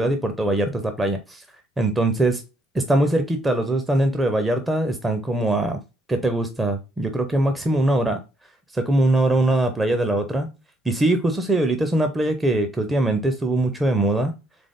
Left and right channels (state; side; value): normal; both; correlation 0.73